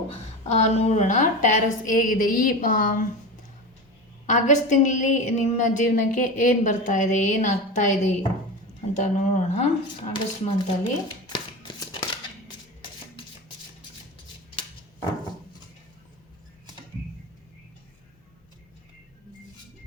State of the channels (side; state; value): both; normal; correlation 0.25